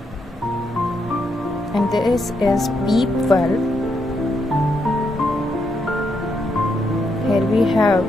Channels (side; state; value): both; normal; correlation 0.79